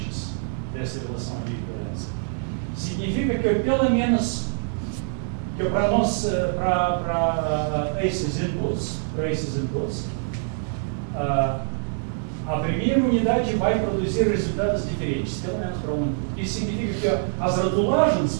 dessa relação de equivalência? Significa que pelo menos que para nós, para esses inputs, a primeira unidade vai produzir resultados diferentes, pelo menos para um. Isso significa que as rotulagens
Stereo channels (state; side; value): silent; left; digital silence